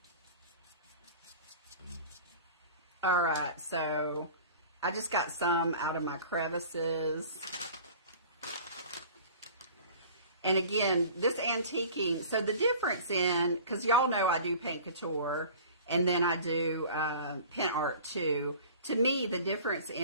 All right, so I just got some out of my crevices. And again, this antiquing, so the difference in, because y'all know I do paint couture, and then I do pen art too. To me, the difference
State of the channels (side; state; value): both; inverted; correlation -0.43